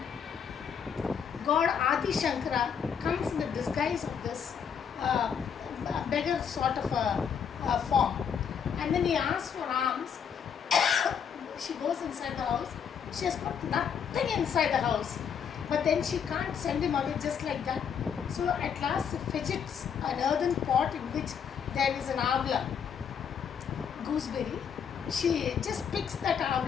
God Adi Shankara comes in the disguise of this beggar sort of a form. And then he asks for alms. She goes inside the house. She has got nothing inside the house. But then she can't send him away just like that. So at last she fidgets an earthen pot in which there is an avla, gooseberry. She just picks that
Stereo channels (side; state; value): right; quieter; 7.4 dB